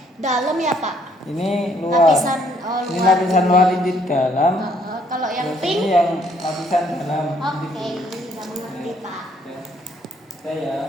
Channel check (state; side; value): normal; both; correlation 0.66